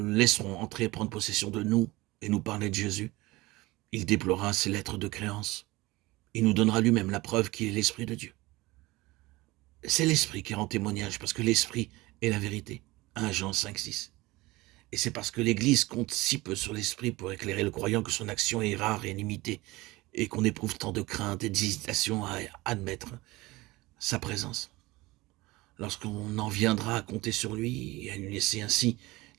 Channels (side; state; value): left; quieter; 20.6 dB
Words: laisserons entrer et prendre possession de nous et nous parler de Jésus, il déploiera ses lettres de créance. Il nous donnera lui-même la preuve qu'il est l'Esprit de Dieu. C'est l'Esprit qui rend témoignage, parce que l'Esprit est la vérité. 1 Jean 5, 6. Et c'est parce que l'Église compte si peu sur l'Esprit pour éclairer le croyant que son action est rare et limitée, et qu'on éprouve tant de crainte et d'hésitation à admettre sa présence. Lorsqu'on en viendra à compter sur lui et à lui laisser ainsi